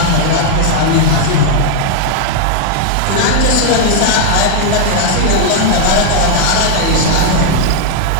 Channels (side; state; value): both; different; correlation 0.00